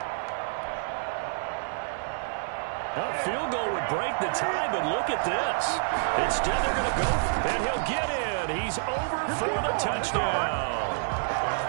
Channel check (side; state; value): left; silent; 59 dB below the other